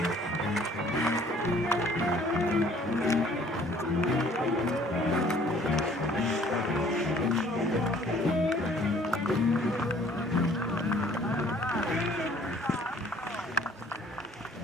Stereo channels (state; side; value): normal; both; correlation 0.56